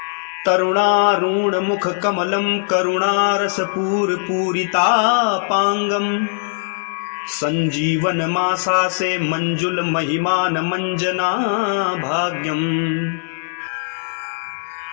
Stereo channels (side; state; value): right; silent; digital silence